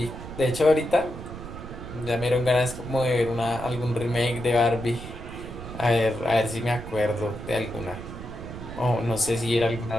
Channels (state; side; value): noise; right; rumble, 11 dB below the sound